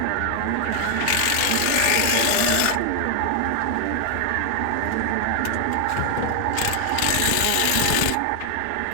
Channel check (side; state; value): both; different; correlation 0.00